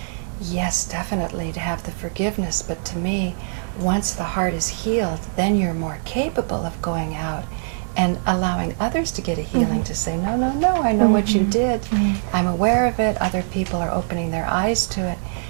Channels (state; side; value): silent; left; 64 dB below the other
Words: yes, definitely to have the forgiveness, but to me, once the heart is healed, then you're more capable of going out and allowing others to get a healing, to say, no, no, no, I know what you did. I'm aware of it. Other people are opening their eyes to it.